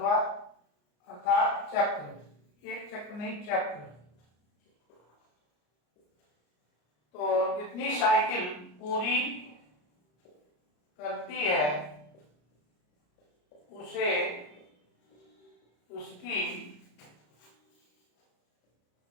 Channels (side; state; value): right; late; 34 ms